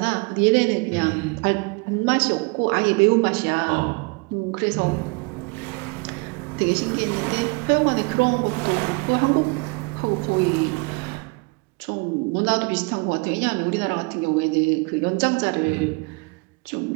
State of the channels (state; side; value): quieter; left; 29.5 dB